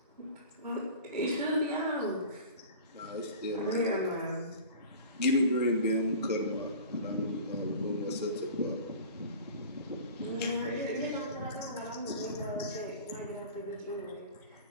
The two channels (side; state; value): both; inverted; correlation -0.39